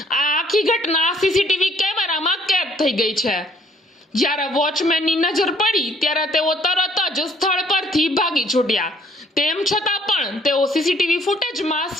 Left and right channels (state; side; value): normal; both; correlation 0.62